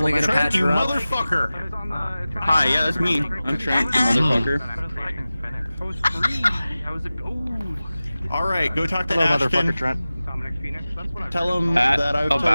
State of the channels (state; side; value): inverted; both; correlation -0.97